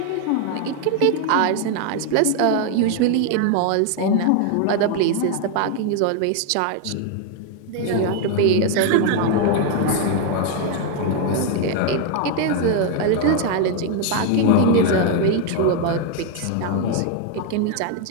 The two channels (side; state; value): both; different; correlation 0.01